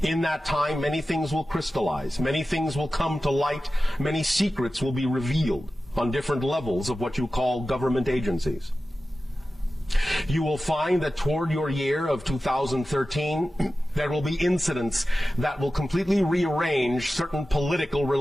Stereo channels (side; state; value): both; normal; correlation 0.94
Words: In that time, many things will crystallize, many things will come to light, many secrets will be revealed on different levels of what you call government agencies. You will find that toward your year of 2013, there will be incidents that will completely rearrange certain political